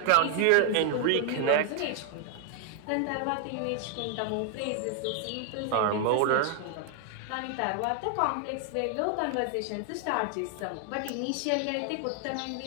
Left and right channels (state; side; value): different; both; correlation 0.00